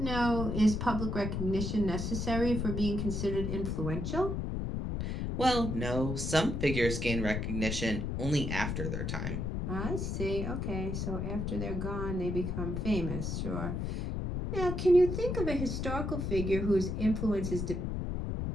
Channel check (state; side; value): noise; left; rumble, 2 dB below the sound